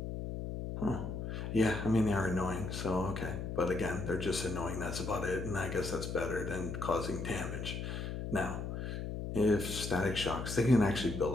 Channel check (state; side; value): noise; left; hum, 5 dB below the sound